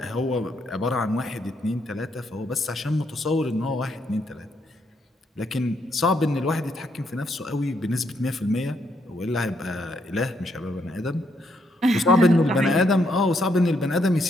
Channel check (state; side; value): normal; both; correlation 0.75